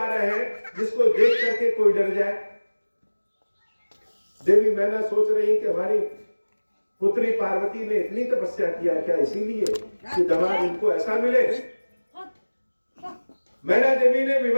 रहे हैं जिसको देख करके कोई डर जाए। देवी मैना सोच रही कि हमारी पुत्री पार्वती ने इतनी तपस्या किया क्या इसीलिए कि दामाद इनको ऐसा मिले? मैना देवी ने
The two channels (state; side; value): inverted; both; correlation -1.00